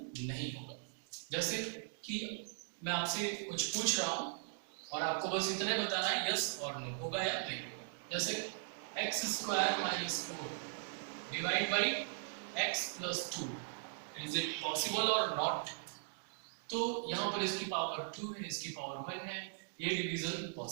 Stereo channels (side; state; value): left; silent; digital silence